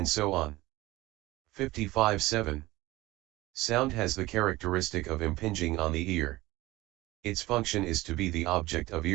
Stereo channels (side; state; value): left; quieter; 18.9 dB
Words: so on. 55.7. Sound has the characteristic of impinging on the ear. Its function is to be the object of